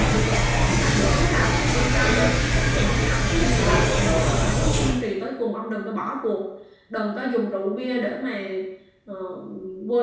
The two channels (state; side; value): identical; both; correlation 1.00